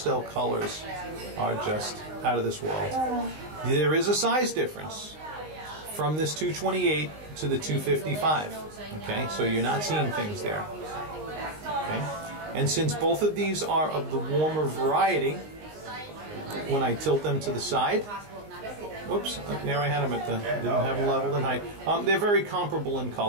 colors are just out of this world. There is a size difference from this 228 to the 255. Okay, so you're not seeing things there. Okay, and since both of these are of the warmer variety, when I tilt them to the side, whoops, there I had them at the, didn't have them leveled in height. They're very comparable in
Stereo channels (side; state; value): left; late; 19 ms